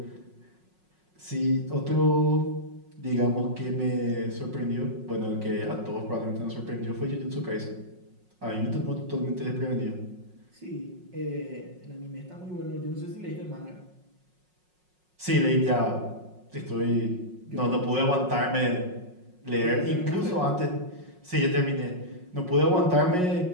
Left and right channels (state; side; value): late; left; 5.5 ms